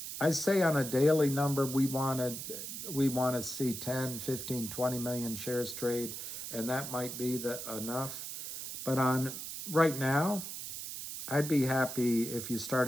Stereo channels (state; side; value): noise; right; hiss, 7 dB below the sound